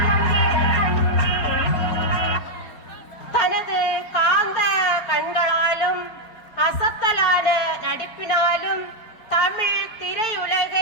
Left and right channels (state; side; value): late; right; 4.4 ms